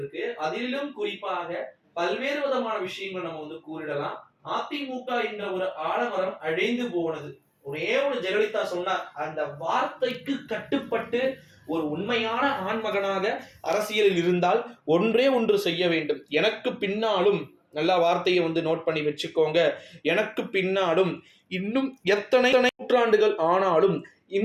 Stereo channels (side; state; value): both; identical; correlation 1.00